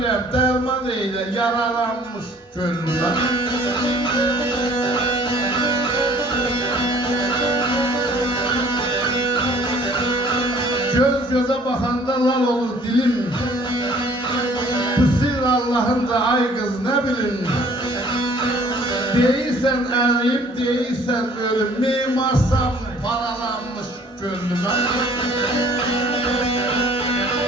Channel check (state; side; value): normal; both; correlation 0.55